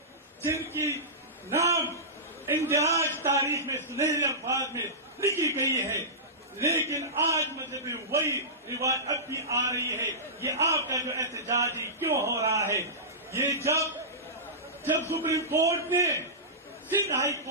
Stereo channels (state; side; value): normal; both; correlation -0.18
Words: جن کی نام اندراج تاریخ میں سنہرے الفاظ میں لکھی گئی ہے، لیکن آج مطلب وہی رواج اب بھی آ رہی ہے۔ یہ آپ کا جو احتجاج کیوں ہو رہا ہے؟ یہ جب سپریم کورٹ نے سندھ ہائی